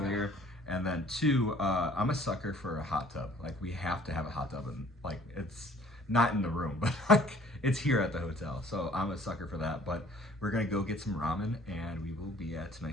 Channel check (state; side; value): normal; both; correlation 0.55